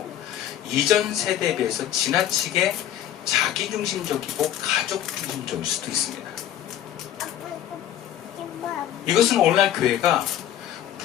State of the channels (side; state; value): right; quieter; 11.5 dB